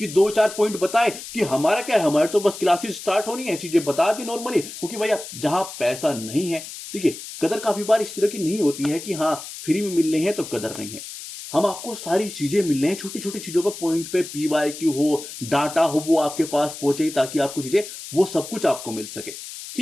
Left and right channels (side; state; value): left; noise; hiss, 11 dB below the sound